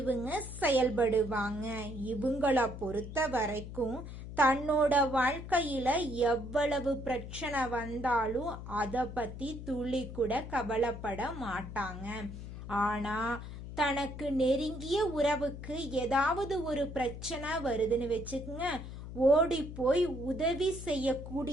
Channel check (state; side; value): noise; left; hum, 10 dB below the sound